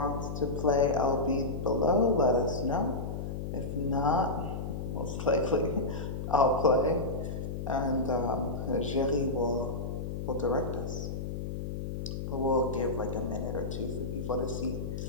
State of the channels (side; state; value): left; noise; hum, 5 dB below the sound